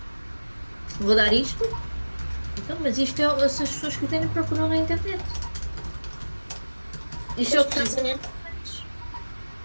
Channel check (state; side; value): inverted; both; correlation -1.00